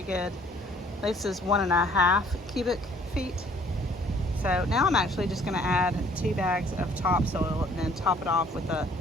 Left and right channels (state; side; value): normal; both; correlation 0.59